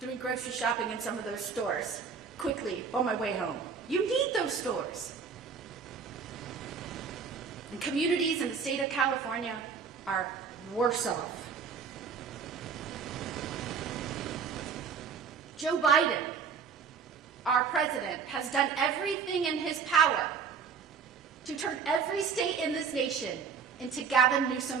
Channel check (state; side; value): quieter; left; 6.1 dB